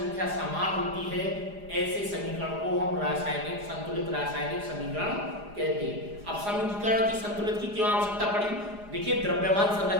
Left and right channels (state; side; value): late; left; 4.9 ms